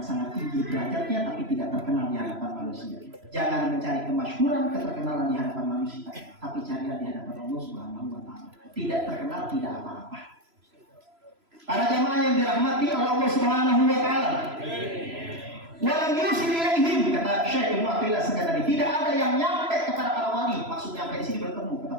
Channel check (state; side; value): late; left; 3.0 ms